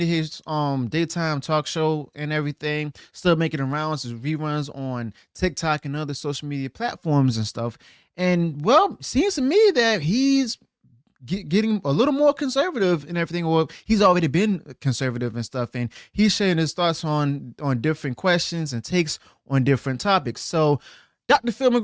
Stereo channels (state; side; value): identical; both; correlation 1.00